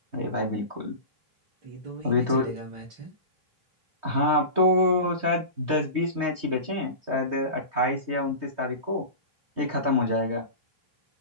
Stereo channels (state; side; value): late; left; 3.2 ms